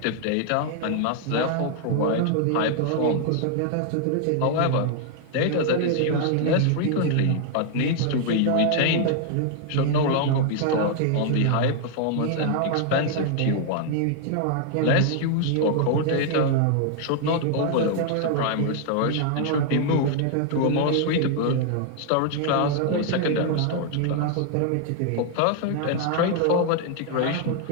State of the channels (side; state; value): both; different; correlation 0.00